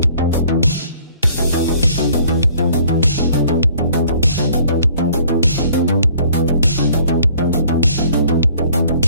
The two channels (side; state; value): both; inverted; correlation -0.57